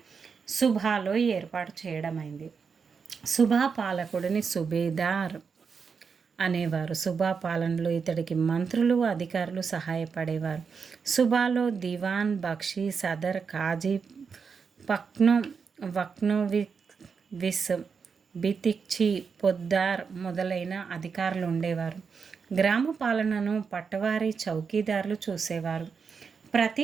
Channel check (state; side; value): quieter; left; 5.7 dB